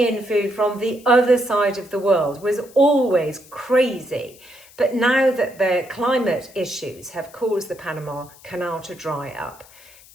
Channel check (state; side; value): noise; left; hiss, 24 dB below the sound